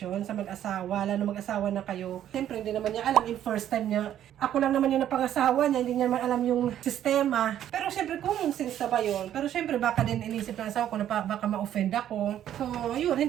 sa mag-asawa, lalo mag-asawa na kayo. Siyempre, hindi naman niya alam yung first time niya. Ako lang naman yung napangasawa niya, hindi niya naman alam yung sistema. Pero siyempre, common sense na ba yun? Pero siyempre, baka din inisip ng asawa ko na baka ma-offend ako. So, yun,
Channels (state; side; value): quieter; left; 11.1 dB